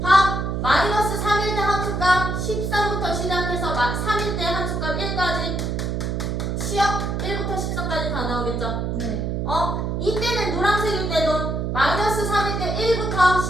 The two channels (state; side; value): noise; right; hum, 1 dB below the sound